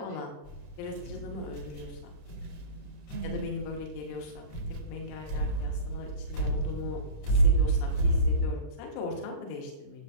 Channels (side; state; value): right; late; 35 ms